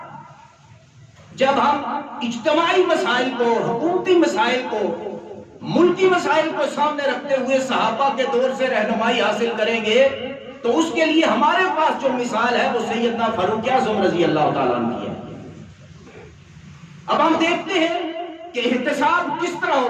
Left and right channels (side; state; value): both; identical; correlation 1.00